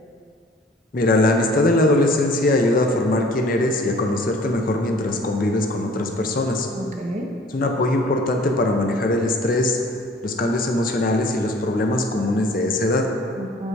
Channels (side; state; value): both; normal; correlation 0.52